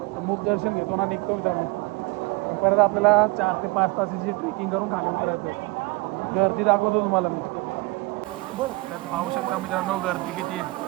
तर मूक दर्शन घेतो ना निघतो मित्रांनो. परत आपल्याला 4 ते 5 तासाची ट्रेकिंग करून खाली उतरायचं. गर्दी दाखवतो तुम्हाला मी. तर पाहू शकता मित्रांनो गर्दी किती आहे.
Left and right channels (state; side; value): quieter; left; 24.1 dB